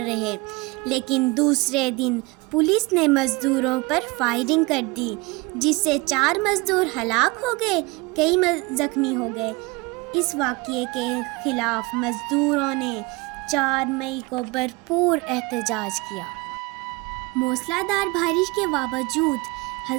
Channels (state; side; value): quieter; left; 24.4 dB